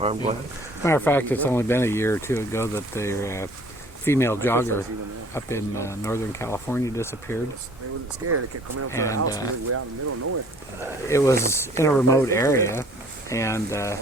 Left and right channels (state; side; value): normal; both; correlation 0.54